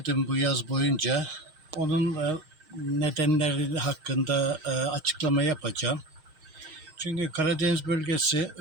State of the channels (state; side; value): late; left; 6.4 ms